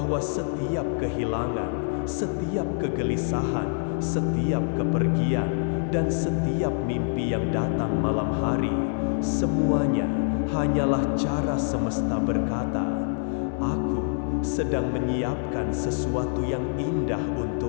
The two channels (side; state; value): right; silent; 58 dB below the other